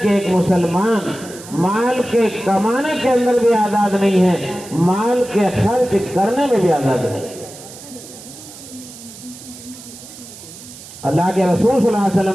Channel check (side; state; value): right; noise; hiss, 16 dB below the sound